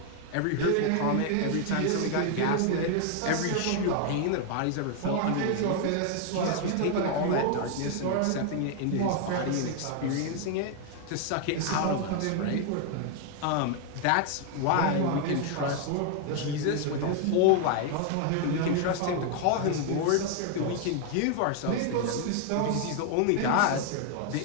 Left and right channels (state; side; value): different; both; correlation 0.00